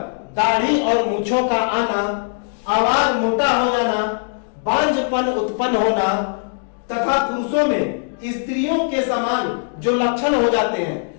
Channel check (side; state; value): right; silent; digital silence